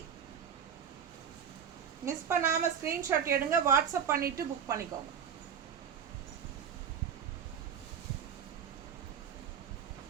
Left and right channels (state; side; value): quieter; left; 7.8 dB